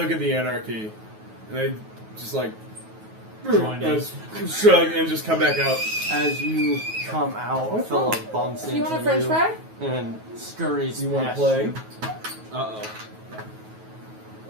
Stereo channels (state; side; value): late; left; 9.3 ms